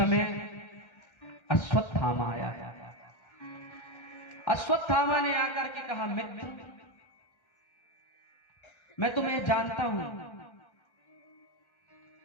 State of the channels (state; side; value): late; right; 1.4 ms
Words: अश्वत्थामा आया। अश्वत्थामा ने आकर के कहा, मित्र, मैं तुम्हें जानता हूं,